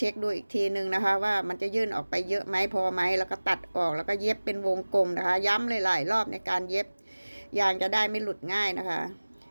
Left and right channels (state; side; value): inverted; both; correlation -1.00